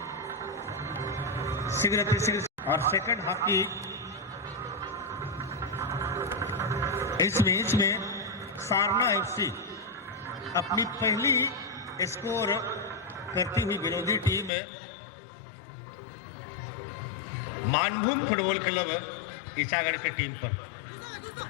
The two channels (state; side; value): drops out; right; at 14.5 s